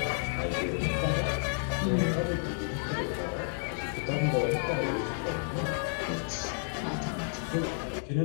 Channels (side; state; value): right; silent; digital silence